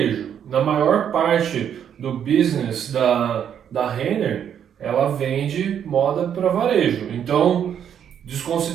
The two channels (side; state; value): left; quieter; 8.8 dB